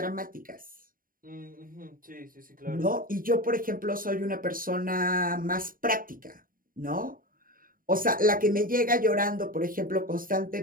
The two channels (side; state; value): left; late; 0.41 ms